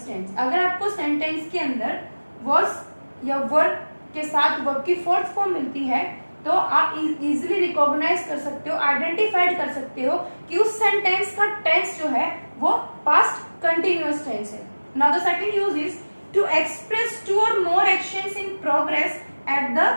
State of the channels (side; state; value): both; inverted; correlation -1.00